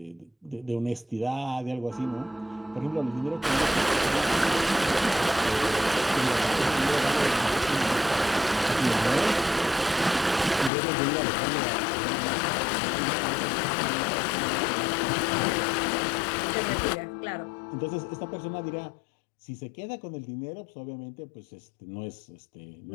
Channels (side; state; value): right; drops out; at 10.7 s